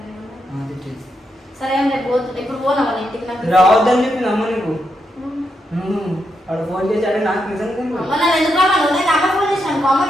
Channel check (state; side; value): normal; both; correlation 0.82